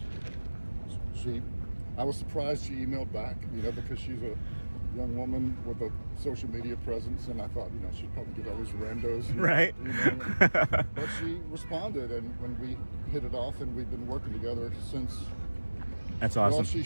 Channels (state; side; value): inverted; both; correlation -1.00